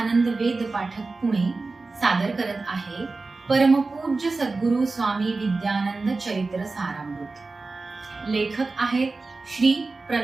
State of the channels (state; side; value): quieter; left; 3.7 dB